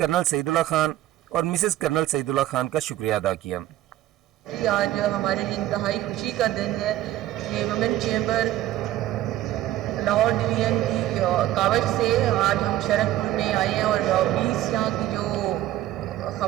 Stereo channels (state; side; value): quieter; left; 13.9 dB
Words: सईदुल्लाह खान और मिसेस कर्नल सईदुल्लाह खान का शुक्रिया अदा किया। आज हमारे लिए इंतहाई खुशी का दिन है कि वुमेन चैम्बर लाहौर डिवीज़न की कावज से आज हम शरकपुर में आए हैं और 20 यहाँ की जो